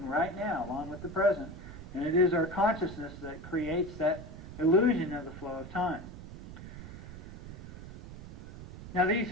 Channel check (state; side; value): noise; right; rumble, 12 dB below the sound